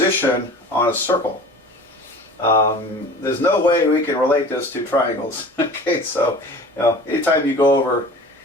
on a circle. There's no way we can relate this to triangles. Okay, so anytime you go over,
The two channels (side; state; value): both; normal; correlation 0.41